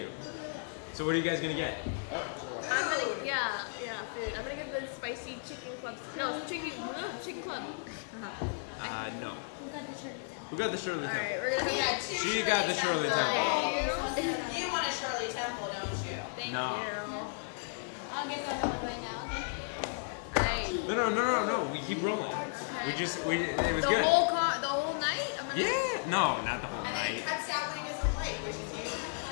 So what are you guys gonna get? Yeah, food. I'm gonna get the spicy chicken club. No, chicken club. No. Who got the Shirley Temple? Who got the Shirley Temple? Alright, we're gonna get She got the Shirley Temple. Okay, so I'll get another. You want a Shirley Temple, don't you? Thank No. you. I'll get the other one right now. Alright. No. We keep rolling. It was good. The whole night? Yeah. No, not the whole And then it night. cuts out what he doesn't like, which is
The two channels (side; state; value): right; silent; digital silence